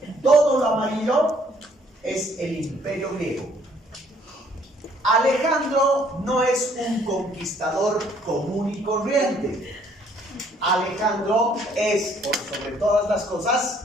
Todo lo amarillo es el imperio griego. Alejandro no es un conquistador común y corriente. Alejandro es, por sobre todas las cosas,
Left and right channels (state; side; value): normal; both; correlation 0.63